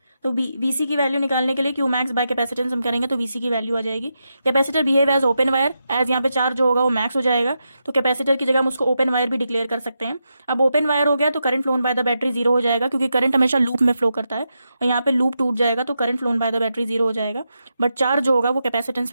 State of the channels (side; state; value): both; inverted; correlation -0.86